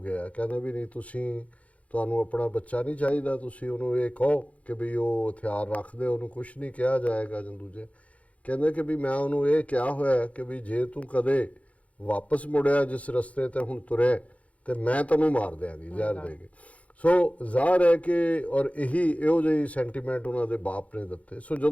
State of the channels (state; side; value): late; right; 0.066 ms